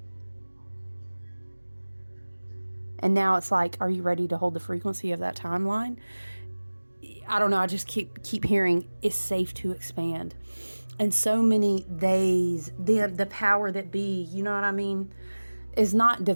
And now it's like, are you ready to hold the frequency of that timeline? I don't know. I just keep hearing it's safe to expand. And so many days, the power that be, you know what I mean? is not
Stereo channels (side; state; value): both; inverted; correlation -1.00